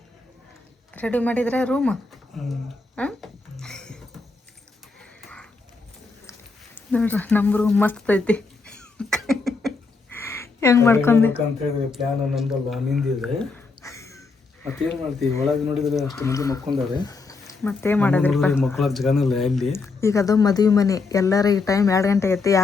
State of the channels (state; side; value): quieter; right; 4.1 dB